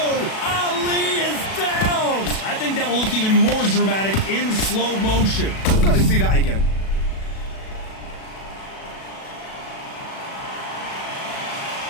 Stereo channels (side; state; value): right; late; 37 ms